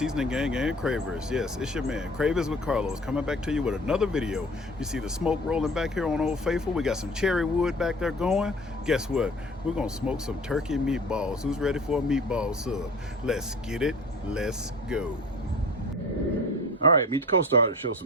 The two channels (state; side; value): normal; both; correlation 0.43